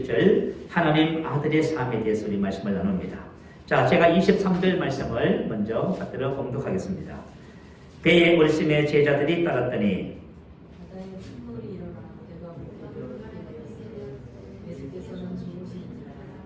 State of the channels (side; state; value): both; identical; correlation 1.00